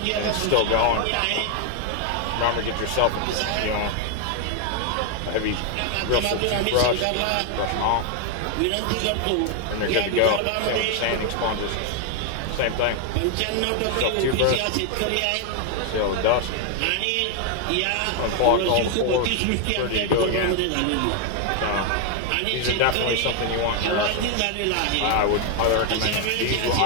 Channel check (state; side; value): different; both; correlation 0.00